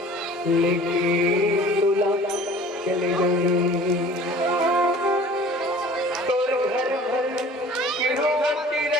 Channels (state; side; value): normal; both; correlation 0.46